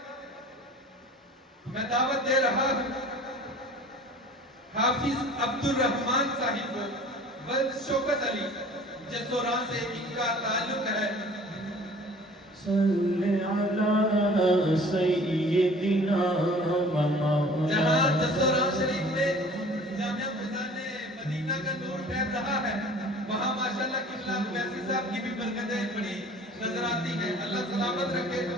میں دعوت دے رہا ہوں حافظ عبد الرحمن صاحب کو ولد شوکت علی جسوران سے ان کا تعلق ہے۔ صلی علی سیدنا و مولانا۔ جہاں جسوران شریف میں جامعہ فضان مدینہ کا نور پھیل رہا ہے، وہاں ماشاءاللہ قبلہ اویسی صاحب کی بھی برکتیں بڑی نظر آتی ہیں، اللہ سلامت رکھے۔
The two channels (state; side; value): normal; both; correlation 0.47